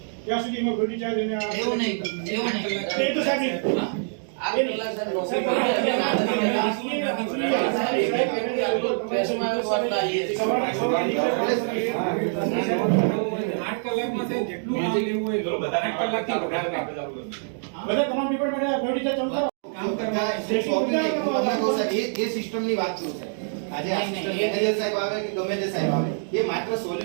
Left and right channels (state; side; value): silent; left; digital silence